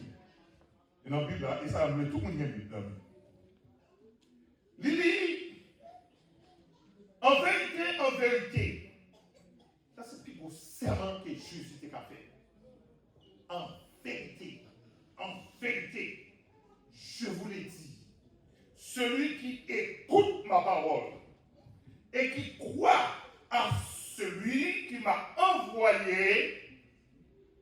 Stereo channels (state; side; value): identical; both; correlation 1.00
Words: Et dans la Bible là, et ça a amené tout le monde qui a une Bible là. Il dit, en vérité, ça c'est le plus beau serment que Jésus t'a fait. En vérité, je vous l'ai dit, celui qui écoute ma parole et qui croit à celui qui m'a envoyé